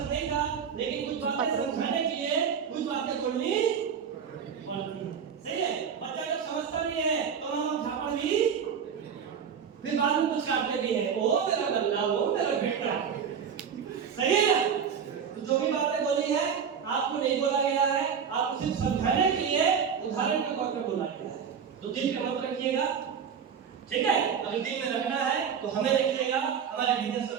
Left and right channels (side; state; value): left; quieter; 7.2 dB